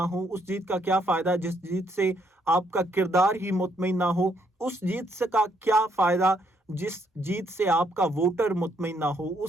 ہو، اس جیت کا کیا فائدہ جس جیت سے آپ کا کردار ہی مطمئن نہ ہو، اس جیت سے کا کیا فائدہ جس جیت سے آپ کا ووٹر مطمئن نہ ہو،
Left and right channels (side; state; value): both; normal; correlation 0.72